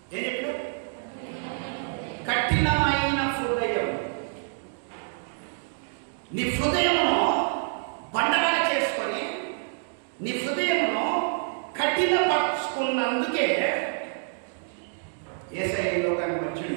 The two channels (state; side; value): silent; left; digital silence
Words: ఏం చెప్పాడు? కఠినమైన హృదయం. నీ హృదయమును బండగా చేసుకొని, నీ హృదయమును కఠినపరుచుకున్నందుకే యేసయ్య లోకానికి